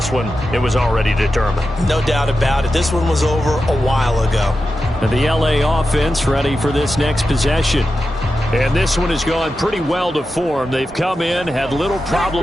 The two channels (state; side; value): normal; both; correlation 0.91